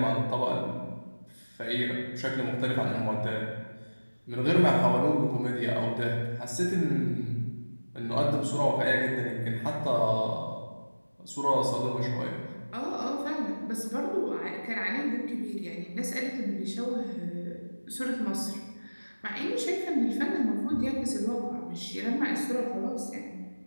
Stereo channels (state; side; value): inverted; both; correlation -1.00